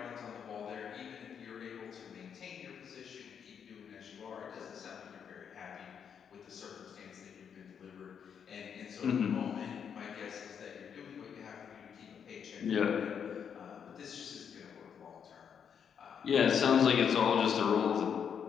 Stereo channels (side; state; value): right; quieter; 7.6 dB